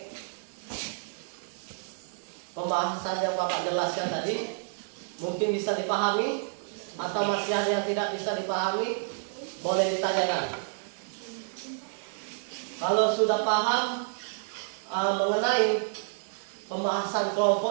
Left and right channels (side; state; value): left; silent; digital silence